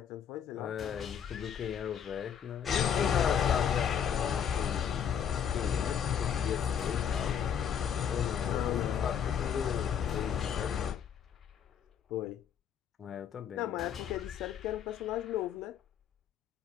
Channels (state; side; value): quieter; right; 8.3 dB